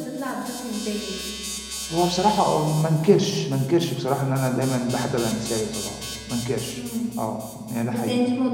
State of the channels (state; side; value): identical; both; correlation 1.00